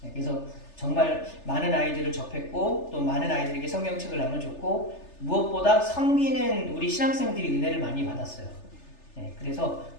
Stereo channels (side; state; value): right; late; 3.3 ms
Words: 그래서 정말 많은 아이들을 접했고 또 많은 아이들에게 성경책을 나눠줬고 무엇보다 섬기는 우리 신학생들이 은혜를 많이 받았어요. 그래서